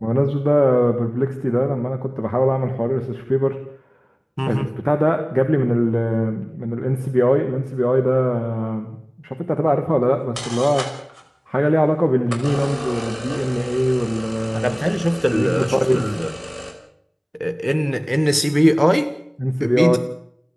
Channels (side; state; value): both; identical; correlation 1.00